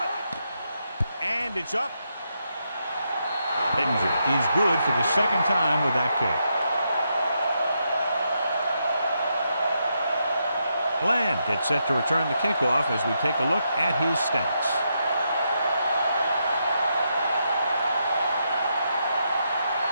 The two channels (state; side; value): inverted; both; correlation -0.82